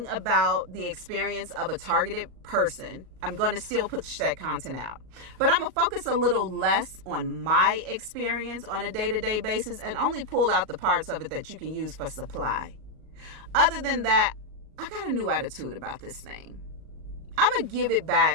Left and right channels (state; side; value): late; left; 38 ms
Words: about the experience of a targeted person. I'm going to still push that content out. But I'm going to focus a little less on my experience on a day-to-day basis and only pull out the parts of it that you can use for supply. Other than that, I got a new attitude about this thing. I'm going to give it